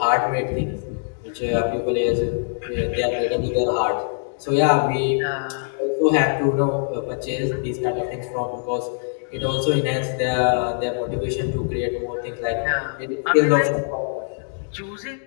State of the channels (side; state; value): right; silent; digital silence